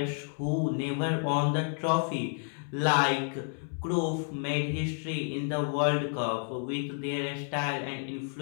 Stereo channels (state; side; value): silent; right; 58 dB below the other